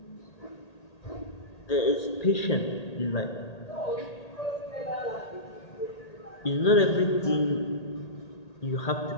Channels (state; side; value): late; right; 1.8 ms